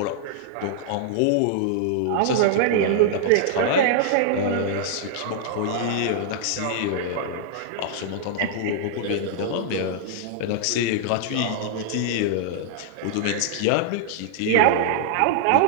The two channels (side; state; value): both; different; correlation -0.01